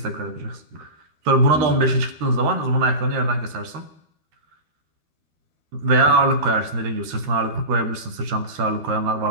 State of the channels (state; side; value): late; left; 12 ms